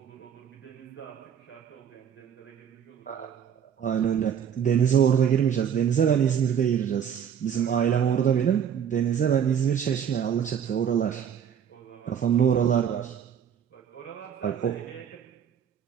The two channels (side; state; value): left; quieter; 8.4 dB